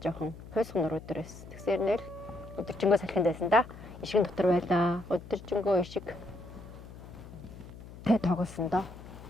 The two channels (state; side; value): noise; left; hum, 16 dB below the sound